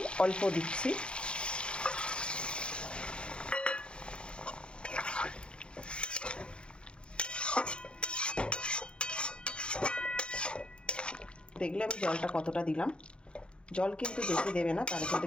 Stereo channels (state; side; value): late; right; 0.055 ms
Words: অল্প দিচ্ছি। দেখলে আমি জলটা কতটা দিলাম। জল কিন্তু বেশি দেবে না, তাহলে কিন্তু